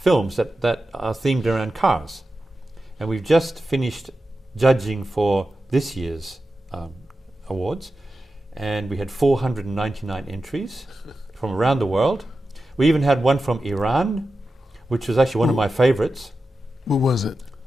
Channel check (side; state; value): both; normal; correlation 0.92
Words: that are themed around cars. And we've just finished judging for this year's awards. And we had 499 entries from around the world. We even had one from Iran, which was actually one of my favorites. What was it?